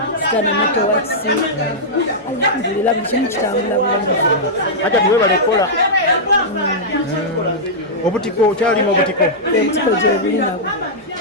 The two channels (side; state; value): both; normal; correlation -0.09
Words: Sitana networks alhamdulillah buli kimu kitambula bulungi. Ate tuwebale kukola obutiko kyalimu obutiko gye buli nabwo